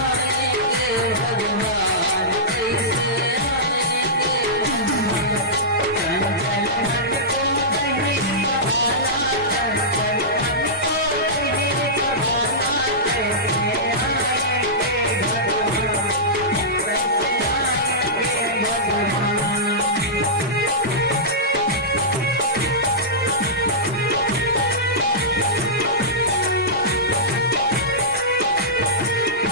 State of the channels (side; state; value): both; normal; correlation -0.15